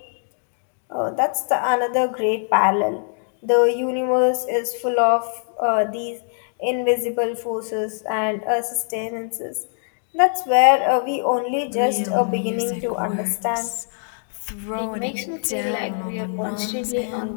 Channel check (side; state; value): right; silent; digital silence